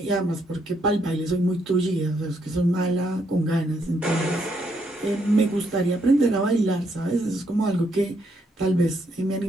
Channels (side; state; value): both; normal; correlation 0.74